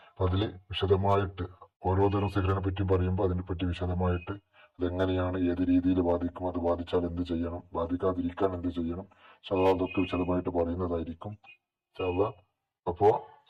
അപ്പൊ അതിൽ വിശദമായിട്ട് ഓരോ തരം സിഹറിനെ പറ്റി പറയുമ്പോൾ അതിനെപ്പറ്റി വിശദമായിട്ട് അതെങ്ങനെയാണ്, ഏത് രീതിയിൽ ബാധിക്കും, അത് ബാധിച്ചാൽ എന്ത് ചെയ്യണം, ബാധിക്കാതിരിക്കാൻ എന്ത് ചെയ്യണം, അതൊക്കെ വിശദമായിട്ട് പറയുന്നതായിരിക്കും. അപ്പോ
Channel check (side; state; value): both; identical; correlation 1.00